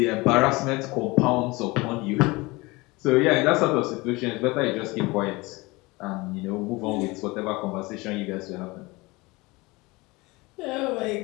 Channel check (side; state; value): right; quieter; 23.3 dB